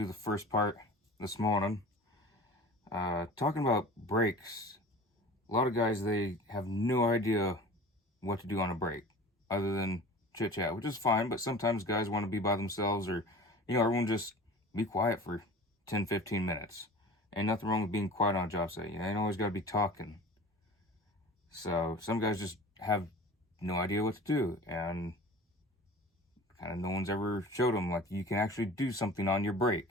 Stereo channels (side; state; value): both; normal; correlation 0.39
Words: the first part this morning. Talking about breaks. A lot of guys, they have no idea what to do on a break other than chit chat, which is fine, but sometimes guys want to be by themselves, or everyone just be quiet for 10-15 minutes. Ain't nothing wrong with being quiet on a job site. You ain't always got to be talking. So some guys just have no idea what to do, and kind of no one's ever showed them like you can actually do something on your break.